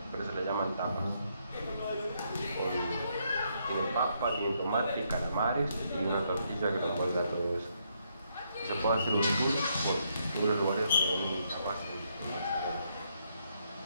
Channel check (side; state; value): both; inverted; correlation -0.76